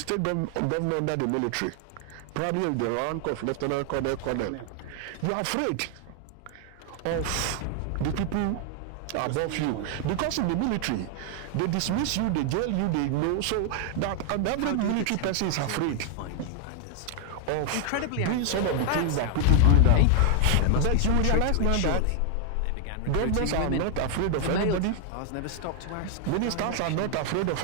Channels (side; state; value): both; different; correlation 0.00